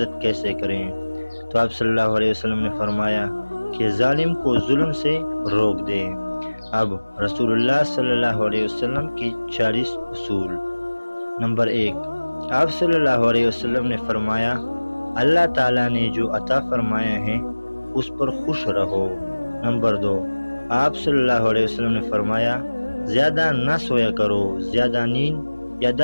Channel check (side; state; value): both; inverted; correlation -1.00